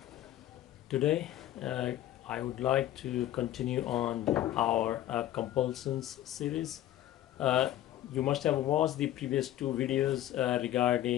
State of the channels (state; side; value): quieter; right; 13.2 dB